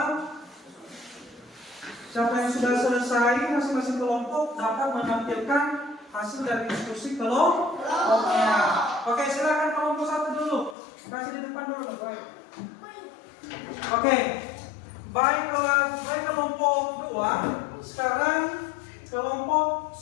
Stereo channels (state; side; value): drops out; right; at 10.8 s